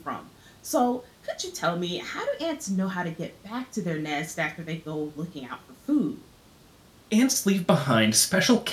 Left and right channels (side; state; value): both; identical; correlation 1.00